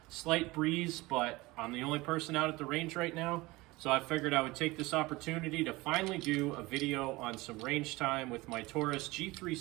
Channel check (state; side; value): quieter; left; 21.3 dB